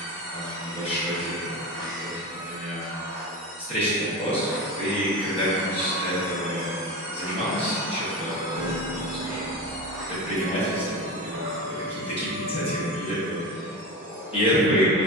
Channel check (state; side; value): normal; both; correlation 0.25